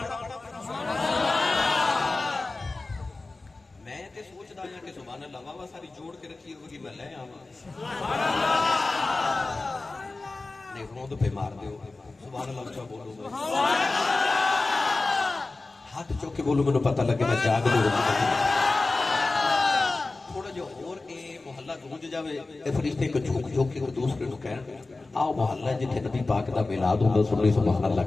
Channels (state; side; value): quieter; right; 3.4 dB